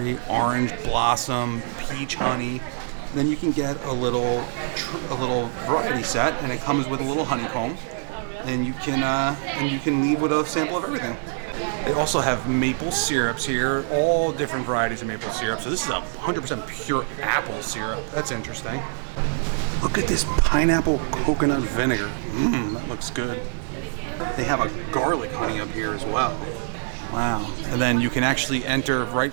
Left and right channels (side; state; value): left; silent; digital silence